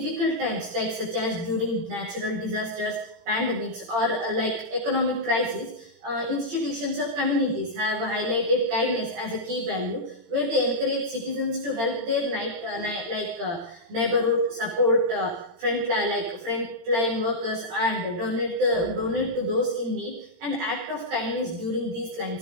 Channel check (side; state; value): left; late; 18 ms